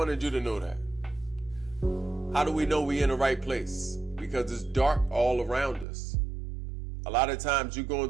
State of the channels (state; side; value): drops out; left; at 5.9 s